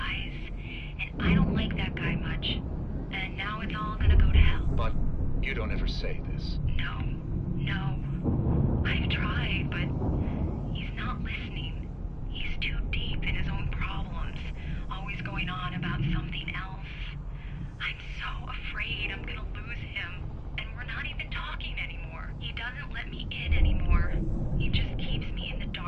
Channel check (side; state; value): both; identical; correlation 1.00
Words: And I don't like that guy much. And now it's all gonna go to hell. But you don't ever say this. No. I've tried, but he's not listening. He's too deep in his own problems. Always going on about something else. I'm so afraid I'm gonna lose him. And we're not even talking anymore. He doesn't let me in anymore. He just keeps me in the